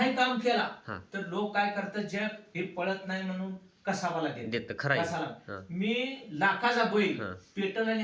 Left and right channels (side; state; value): both; identical; correlation 1.00